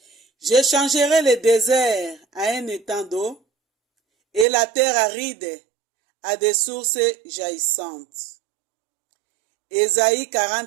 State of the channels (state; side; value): drops out; left; at 4.5 s